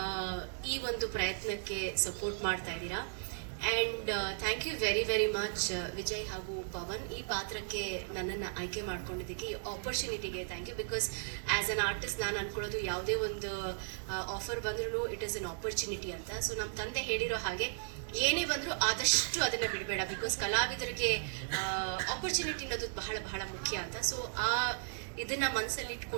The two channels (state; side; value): silent; left; digital silence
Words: ಈ ಒಂದು ಪ್ರಯತ್ನಕ್ಕೆ ಸಪೋರ್ಟ್ ಮಾಡ್ತಾ ಇದ್ದೀರಾ. And thank you very very much Vijay ಹಾಗೂ ಪವನ್, ಈ ಪಾತ್ರಕ್ಕೆ ನನ್ನನ್ನು ಆಯ್ಕೆ ಮಾಡ್ಕೊಂಡಿದ್ದಕ್ಕೆ, ಈ ಆಪರ್ಚುನಿಟಿಗೆ thank you. Because as an artist ನಾನು ಅನ್ಕೊಳ್ಳೋದು ಯಾವುದೇ ಒಂದು ಆಫರ್ ಬಂದ್ರೂ ಇಟ್ ಈಸ್ ಅನ್ ಆಪರ್ಚುನಿಟಿ ಅಂತ. ಸೊ ನಮ್ಮ ತಂದೆ ಹೇಳಿರೋ ಹಾಗೆ ಏನೇ ಬಂದರೂ ಆದಷ್ಟು ಅದನ್ನು ಬಿಡಬೇಡ, ಬಿಕಾಸ್ ಕಲಾವಿದರಿಗೆ ಆಪರ್ಚುನಿಟಿ ಅನ್ನೋದು ಬಹಳ ಬಹಳ ಮುಖ್ಯ ಅಂತ. ಸೊ ಇದನ್ನ ಮನಸ್ಸಲ್ಲಿ